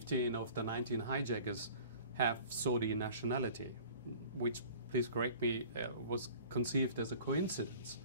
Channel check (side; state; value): both; inverted; correlation -0.46